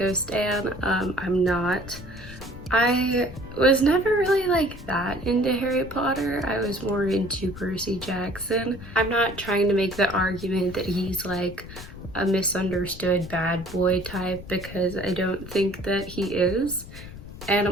stan, I'm not. I was never really like that into Harry Potter. I was more into Percy Jackson. I'm not trying to make the argument that he's like a misunderstood bad boy type, because I don't think that he is. And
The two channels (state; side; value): noise; left; rumble, 14 dB below the sound